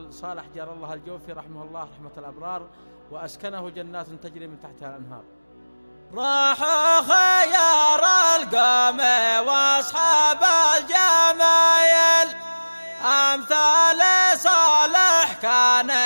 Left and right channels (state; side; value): inverted; both; correlation -1.00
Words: صالح جار الله الجوفي رحمه الله رحمة الأبرار، وأسكنه جنات تجري من تحتها الأنهار. راحوا خيار القوم واصحاب الجمايل، أمثال صالح كان